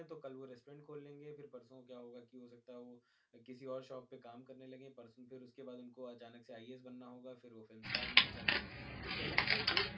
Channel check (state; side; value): identical; both; correlation 1.00